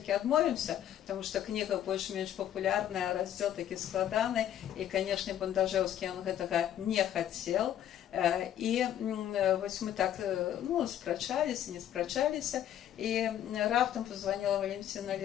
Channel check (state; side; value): quieter; right; 11.0 dB